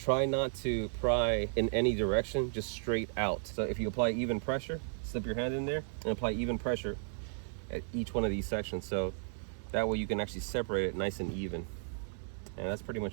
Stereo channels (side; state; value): left; silent; digital silence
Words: not to pry in any direction, just straight out. So if you apply even pressure, slip your hand in there and apply even pressure at each one of these sections. So that way you can actually separate it nice and even. And that's pretty